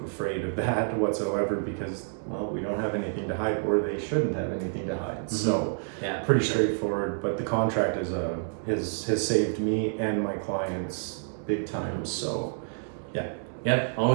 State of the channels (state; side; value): silent; left; digital silence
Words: afraid of that whatsoever, because, well, we don't have anything to hide, or they shouldn't have anything to hide. So pretty straightforward. But the contract has saved me and my clients big time. So Yep,